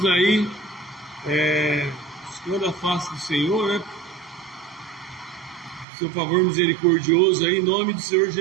aí, buscando a face do Senhor, né? Seu favor misericordioso aí, em nome do Senhor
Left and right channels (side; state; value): left; drops out; at 5.9 s